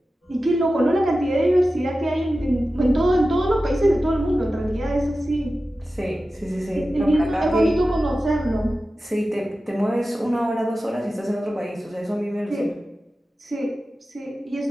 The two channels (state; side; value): normal; both; correlation 0.94